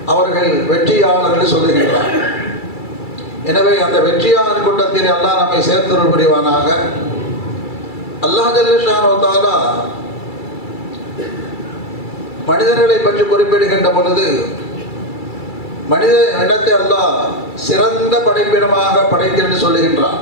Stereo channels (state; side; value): late; right; 2.3 ms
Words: அவர்கள் வெற்றியாளர்கள் சொல்லுகின்றார். எனவே அந்த வெற்றியாளர் கூட்டத்தில் அல்லாஹ் நம்மை சேர்த்தருள் புரிவானாக. அல்லாஹ் ஜல்ல ஷானஹு தஆலா மனிதர்களை பற்றி குறிப்பிடுகின்ற பொழுது மனித இனத்தை அல்லாஹ் சிறந்த படைப்பினமாக படைத்தென்று சொல்லுகின்றான்.